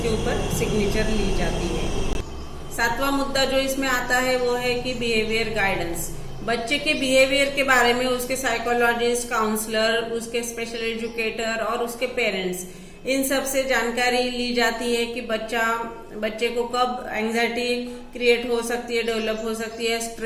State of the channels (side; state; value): both; identical; correlation 1.00